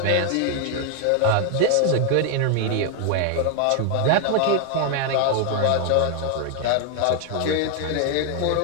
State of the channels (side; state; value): both; different; correlation 0.00